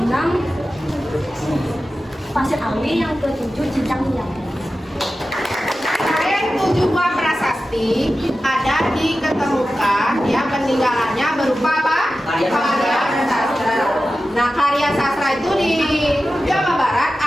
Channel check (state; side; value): normal; both; correlation 0.93